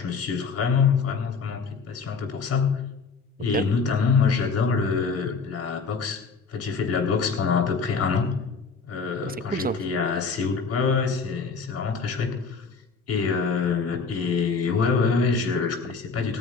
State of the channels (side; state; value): right; quieter; 5.0 dB